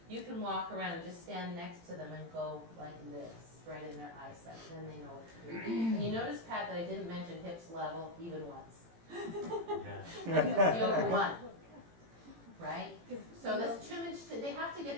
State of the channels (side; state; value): left; late; 18 ms